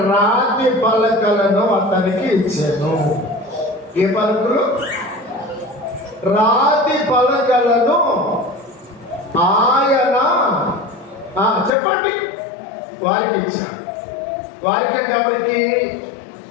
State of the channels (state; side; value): drops out; right; at 11.7 s